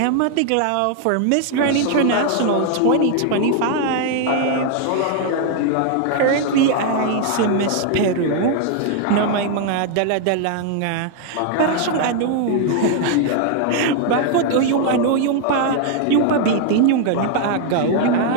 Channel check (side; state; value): both; different; correlation 0.00